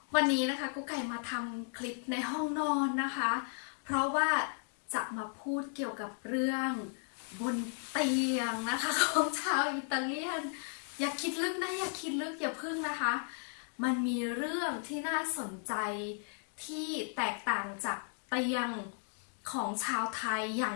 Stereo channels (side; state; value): right; silent; 54 dB below the other